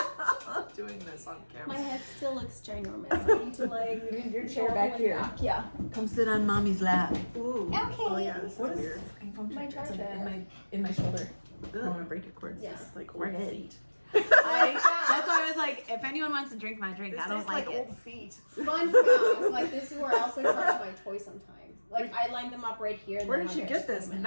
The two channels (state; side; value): inverted; both; correlation -1.00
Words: Doing this on camera. My head still looks ginormous. I need to Need your chair back here. Yeah. Come sit on mommy's lap. Ooh. Okay. Oh yeah, this What is is weird. My charger. in my shoulder. I don't want to break your cords. Yeah. It's like We're old good. feet. That's why I was like, if anyone wants to drink my drink, This I don't tastes like like it. old feet. Fun fact, like this is where I also charge my toys sometimes. Like I line them up right here. And Where then did you I get just put this? them in.